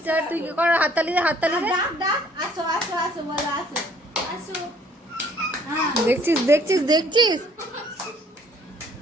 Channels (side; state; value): both; normal; correlation 0.60